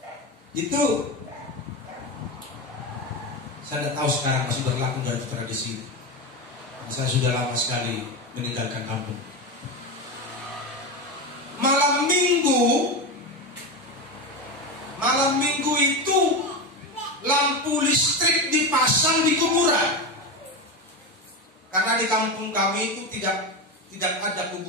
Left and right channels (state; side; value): normal; both; correlation 0.18